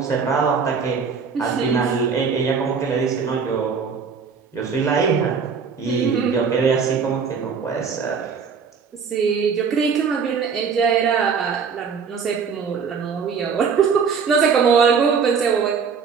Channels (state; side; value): quieter; left; 6.0 dB